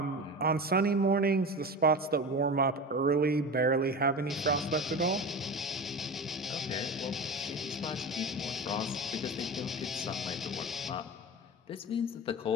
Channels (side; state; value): both; normal; correlation 0.29